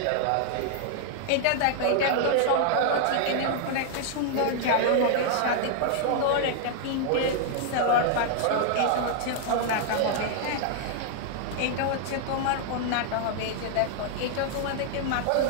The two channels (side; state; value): both; different; correlation 0.00